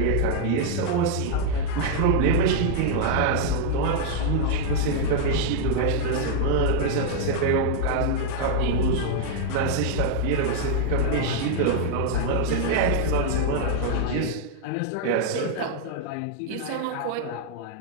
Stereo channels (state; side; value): different; both; correlation -0.01